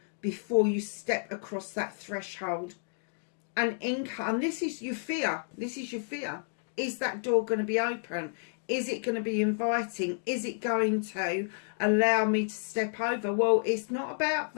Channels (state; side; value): silent; right; digital silence